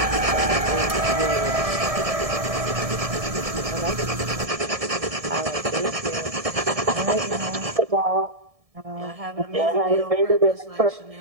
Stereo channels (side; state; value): left; late; 1.7 ms